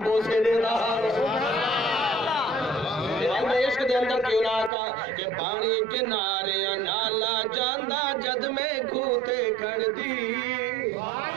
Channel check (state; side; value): drops out; left; at 4.7 s